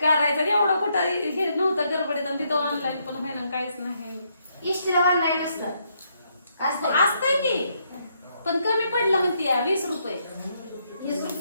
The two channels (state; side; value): inverted; both; correlation -0.75